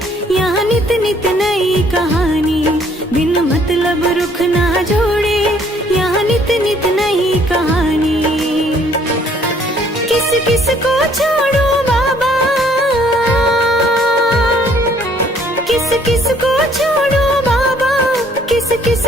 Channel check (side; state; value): both; normal; correlation 0.62